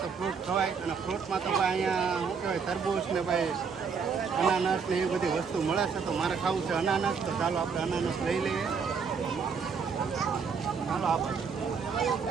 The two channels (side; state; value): left; quieter; 5.8 dB